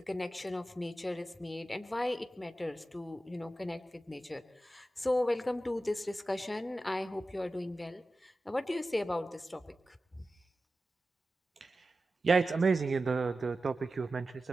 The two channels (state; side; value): normal; both; correlation 0.94